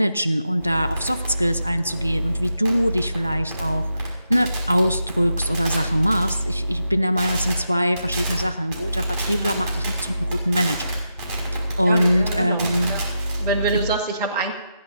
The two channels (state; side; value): inverted; both; correlation -0.86